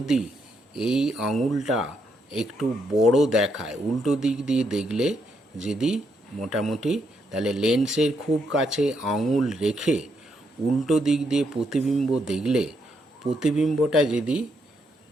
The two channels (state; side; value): normal; both; correlation 0.77